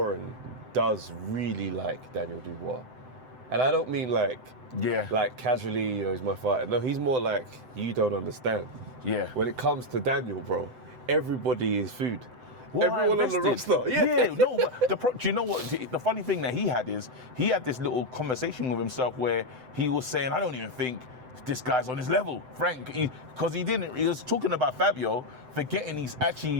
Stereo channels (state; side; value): late; left; 7.9 ms